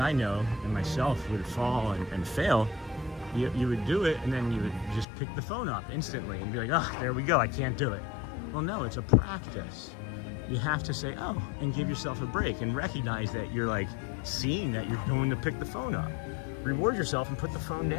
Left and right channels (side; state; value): right; drops out; at 5.1 s